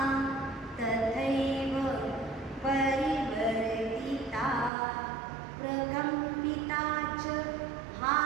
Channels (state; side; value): drops out; left; at 4.7 s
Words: तथैव परिवर्तिता प्रकम्पिता च